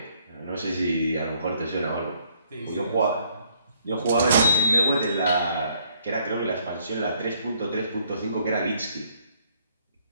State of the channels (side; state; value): both; inverted; correlation -0.66